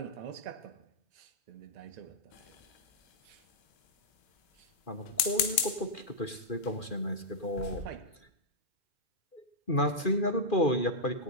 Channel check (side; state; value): right; late; 2.7 ms